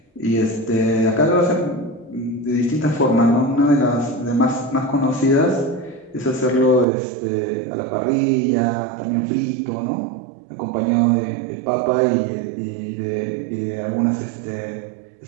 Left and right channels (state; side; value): drops out; left; at 6.9 s